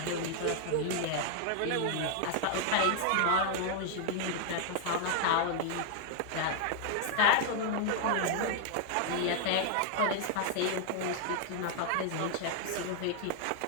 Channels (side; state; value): both; different; correlation 0.00